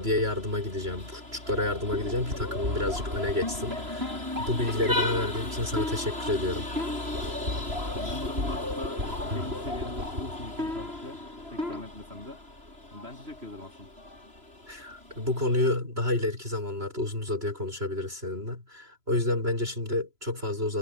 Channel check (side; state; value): left; late; 3.0 ms